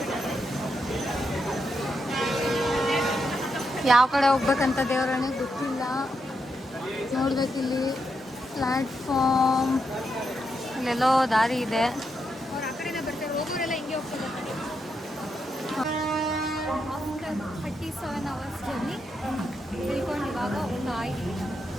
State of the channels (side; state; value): both; normal; correlation 0.83